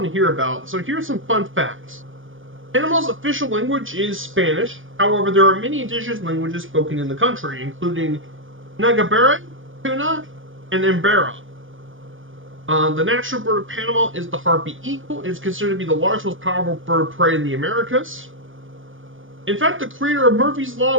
to hear about. So here's some fun facts. Panama's official language is Spanish. However, there are many indigenous languages spoken in the country, including Nagabera, Tuna, and Embera. The national bird of Panama is the harpy eagle. It is considered to be the largest, most powerful bird of prey in the Americas. In fact, the creator of Murphy's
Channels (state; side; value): late; left; 0.58 ms